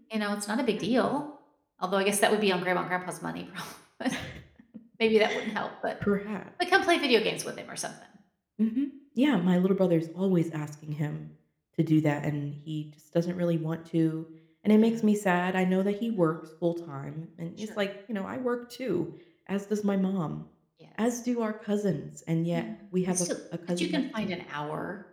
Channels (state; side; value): identical; both; correlation 1.00